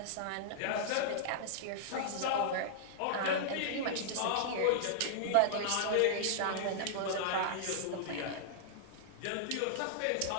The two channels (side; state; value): both; different; correlation -0.01